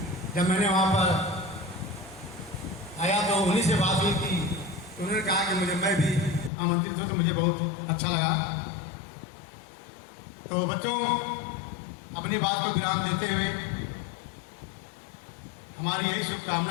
जब मैंने वहाँ पर आया तो उन्हीं से बात हुई कि उन्होंने कहा कि मैं भी आमंत्रित हूँ, तो मुझे बहुत अच्छा लगा। तो बच्चों, अपनी बात को विराम देते हुए हमारी यही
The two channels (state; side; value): drops out; right; at 6.5 s